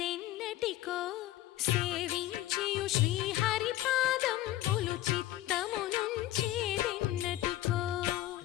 సేవించియు శ్రీహరి పాదంబులు చిత్తమునుంచేదెన్నటికో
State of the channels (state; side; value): quieter; right; 15.0 dB